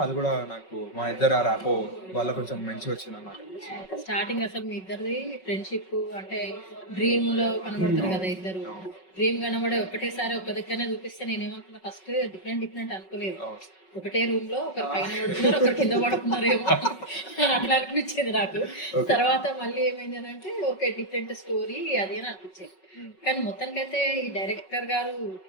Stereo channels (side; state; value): right; late; 5.4 ms